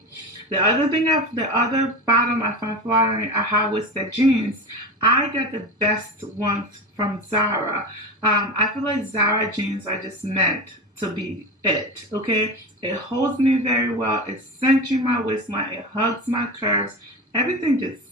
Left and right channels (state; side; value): normal; both; correlation 0.26